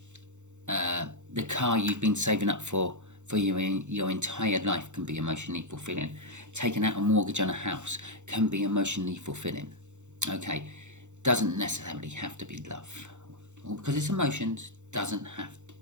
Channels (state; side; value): late; left; 0.84 ms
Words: The car you've been saving up for your entire life can be emotionally fulfilling. Taking out a mortgage on a house can be emotionally fulfilling. Okay, doesn't necessarily have to be love. Or because it's emotions, doesn't have to